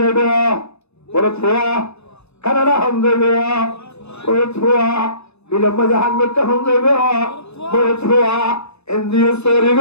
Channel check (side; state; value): right; late; 0.80 ms